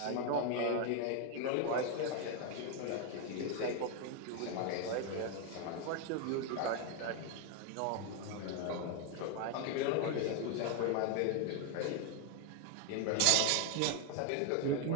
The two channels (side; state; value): both; different; correlation 0.01